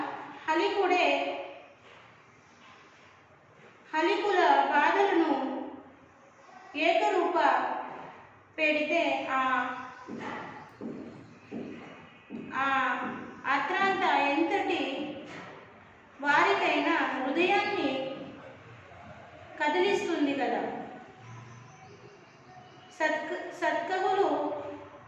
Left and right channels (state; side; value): identical; both; correlation 1.00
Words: హలికుల బాధలను ఏకరూప పెడితే అత్రాంత ఎంతటి వారికైనా హృదయాన్ని కదిలిస్తుంది కదా. సత్కవులు